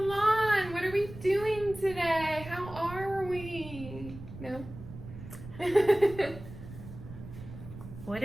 What are we doing today? How are we? No? What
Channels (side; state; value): right; noise; rumble, 13 dB below the sound